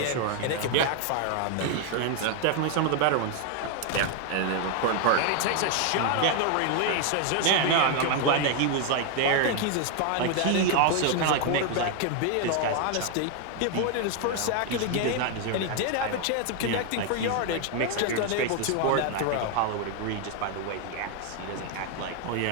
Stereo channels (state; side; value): different; both; correlation 0.01